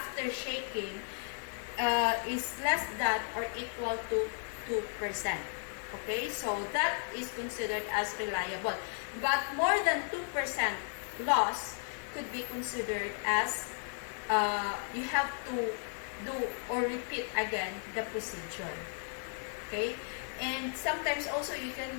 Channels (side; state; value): right; silent; 55 dB below the other